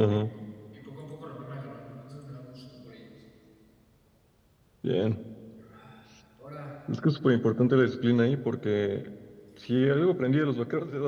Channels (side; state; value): both; identical; correlation 1.00